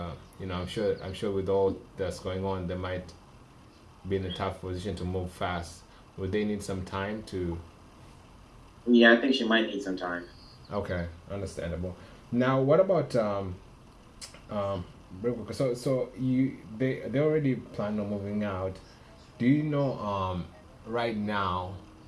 I'm sure with all that's going on, they might be in a tough position to move fast. Would they need some time to? Yeah, I think she might need some time. Okay, understandable. Now, what about real quick, so they already plan on moving out. Do you know right now,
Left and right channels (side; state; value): both; identical; correlation 1.00